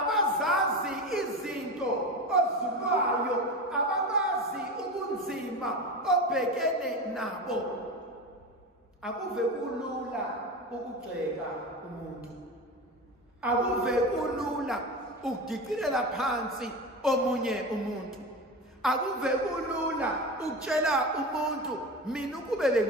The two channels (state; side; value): normal; both; correlation 0.25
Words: izinto ozulwayo, ababazi ubunzima obhekene nabo. Akuve kulula ukugxeka umuntu, akuve kulula ukudikilela phansi omunye umuntu, akuve kulula ukutshela umuntu mina ukube